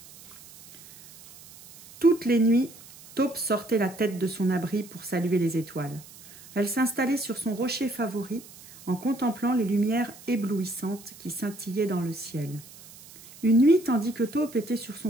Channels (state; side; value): noise; right; hiss, 20 dB below the sound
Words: Toutes les nuits, Taupe sortait la tête de son abri pour saluer les étoiles. Elle s'installait sur son rocher favori en contemplant les lumières éblouissantes qui scintillaient dans le ciel. Une nuit, tandis que Taupe était sur son